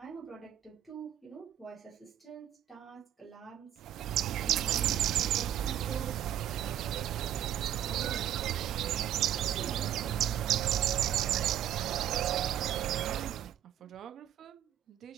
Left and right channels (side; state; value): left; quieter; 11.1 dB